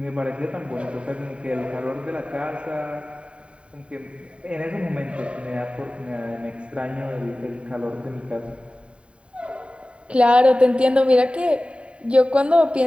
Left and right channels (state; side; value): late; left; 0.058 ms